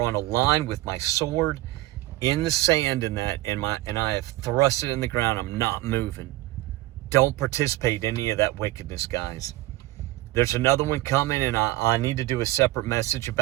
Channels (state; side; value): quieter; left; 17.4 dB